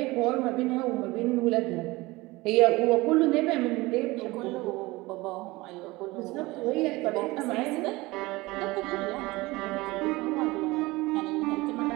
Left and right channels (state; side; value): quieter; left; 21.2 dB